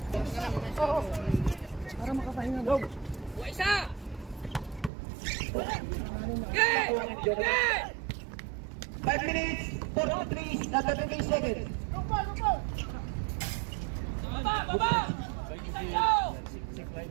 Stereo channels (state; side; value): drops out; left; at 4.9 s